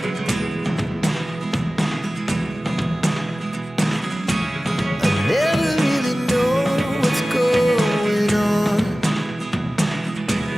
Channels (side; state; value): both; normal; correlation 0.97